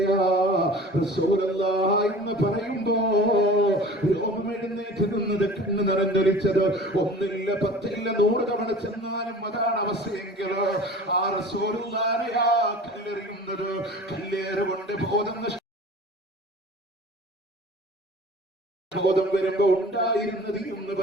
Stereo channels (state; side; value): normal; both; correlation 0.42